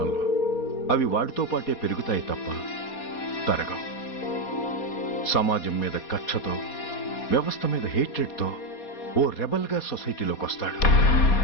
అవి వాడితో పాటే పెరుగుతాయి తప్ప తరగవు. సమాజం మీద కక్షతో, వ్యవస్థ మీద హేట్రెడ్తో ఓ రెబల్గా సొసైటీలోకి వస్తాడు.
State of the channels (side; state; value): right; late; 4.2 ms